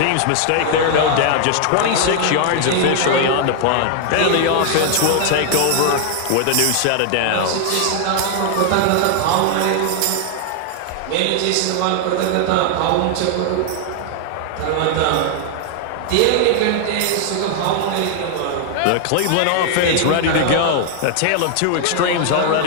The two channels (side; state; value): both; different; correlation 0.00